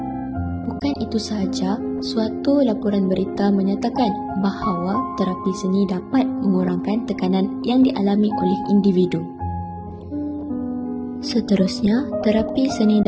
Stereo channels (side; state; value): both; identical; correlation 1.00